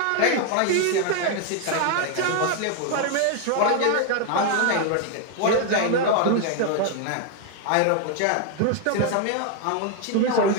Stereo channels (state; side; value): different; both; correlation 0.01